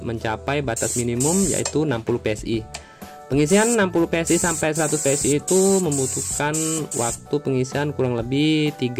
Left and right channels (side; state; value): both; identical; correlation 1.00